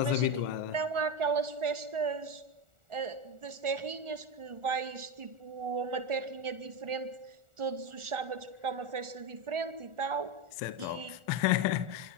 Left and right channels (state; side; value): late; left; 1.4 ms